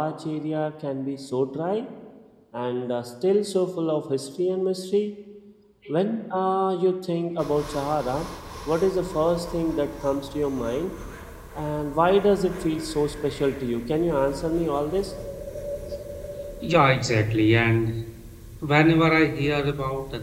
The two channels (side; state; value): both; identical; correlation 1.00